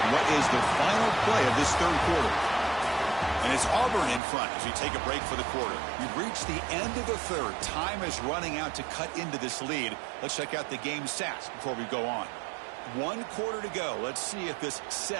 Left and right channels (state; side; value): drops out; left; at 4.2 s